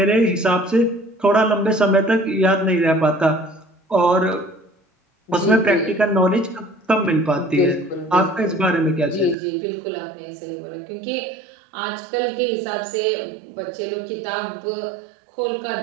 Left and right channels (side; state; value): left; drops out; at 9.3 s